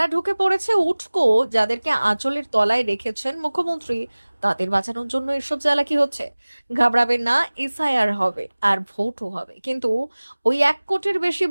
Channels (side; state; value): both; inverted; correlation -1.00